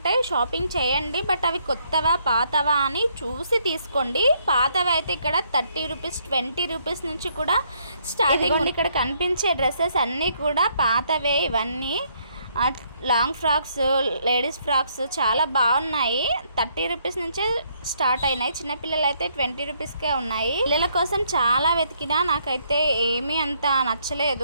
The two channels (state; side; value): inverted; both; correlation -0.70